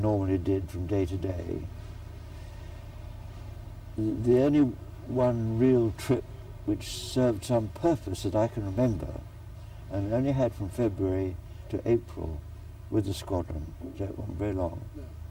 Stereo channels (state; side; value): identical; both; correlation 1.00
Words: did from day to day. The only one real trip which served some purpose that I can remember, and only had from February to April with the squadron, so it wasn't very long.